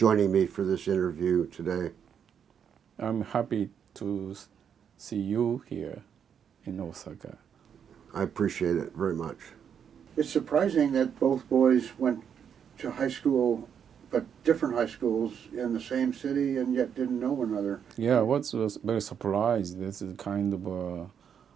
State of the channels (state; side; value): quieter; left; 7.9 dB